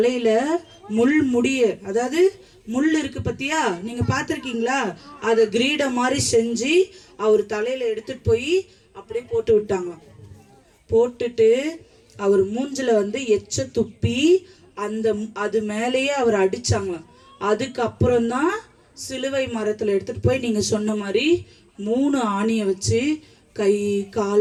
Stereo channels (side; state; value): both; identical; correlation 1.00